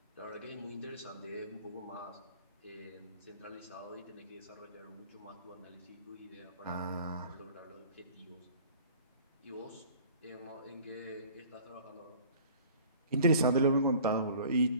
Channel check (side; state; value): both; inverted; correlation -0.48